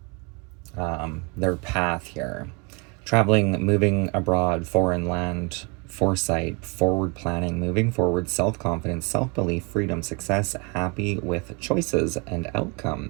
their path here. Traveling, moving abroad, foreign land, foresight, forward planning, moving forward, self-confidence, self-belief, freedom, success, happy with choices and outcome.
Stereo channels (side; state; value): left; quieter; 29.4 dB